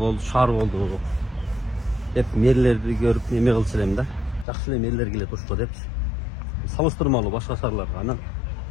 шаар болду деп мэрлерди көрүп неме кылчу элем да. Жакшы эле мэрлер келет Ошко депчи. Салыштырмалуу башка шаарларга. Анан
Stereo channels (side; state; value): right; drops out; at 4.5 s